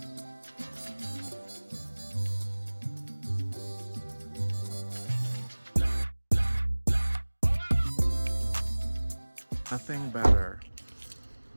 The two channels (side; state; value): both; inverted; correlation -1.00